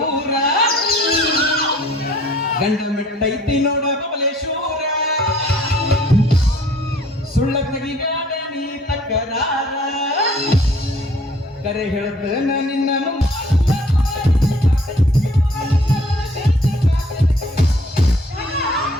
ಗಂಡ ಮೆಟ್ಟೈತಿ ನೋಡ ಬಬಲೇಶ್ವರ, ಸುಳ್ಳ ತೆಗಿಬೇಡ ನೀ ತಕರಾರ, ಕರೆ ಹೇಳ್ತೇನ ನಿನ್ನನು.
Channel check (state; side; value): normal; both; correlation 0.57